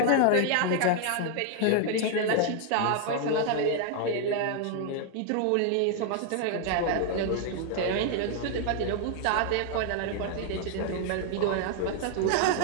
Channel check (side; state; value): both; different; correlation 0.00